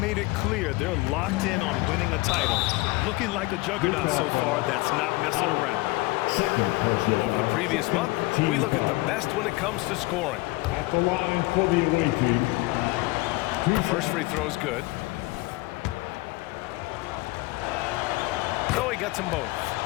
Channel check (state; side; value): quieter; right; 21.8 dB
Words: it clear they're locked in on winning a title. Looking like a juggernaut so far that's not messing around. Over the previous month, we look at the best when it comes to scoring. At the line for the away team. First free throw is good. So he gets them both.